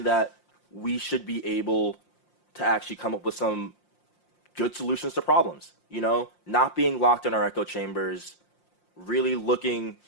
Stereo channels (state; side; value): late; right; 5.7 ms